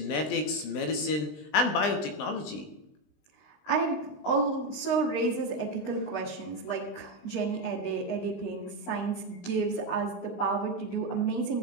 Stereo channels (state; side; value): late; right; 20 ms